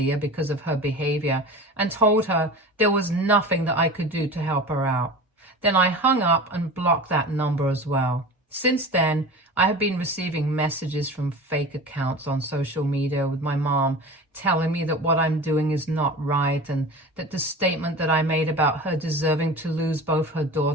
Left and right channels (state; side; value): normal; both; correlation 0.34